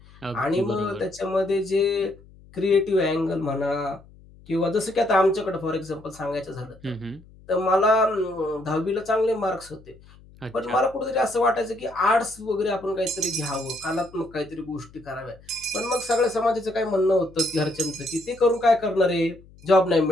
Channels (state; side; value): noise; left; hum, 24 dB below the sound